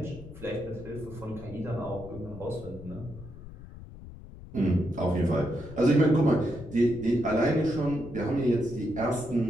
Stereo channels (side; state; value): left; noise; rumble, 15 dB below the sound